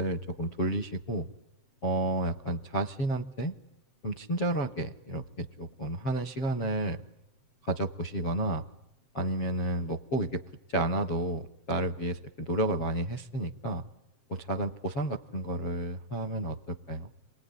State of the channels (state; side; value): late; right; 7.6 ms